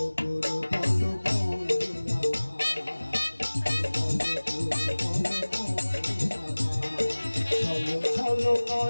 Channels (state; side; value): inverted; both; correlation -1.00